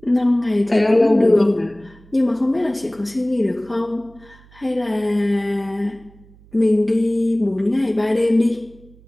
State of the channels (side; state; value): right; noise; hum, 26 dB below the sound